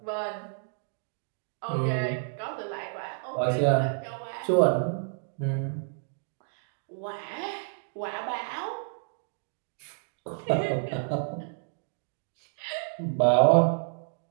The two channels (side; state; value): left; silent; digital silence